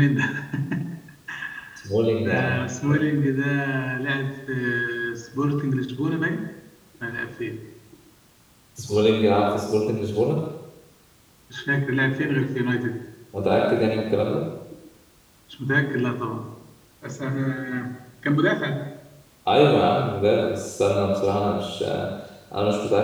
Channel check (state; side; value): identical; both; correlation 1.00